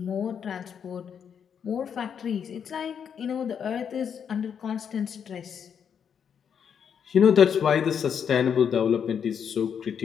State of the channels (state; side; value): quieter; right; 7.6 dB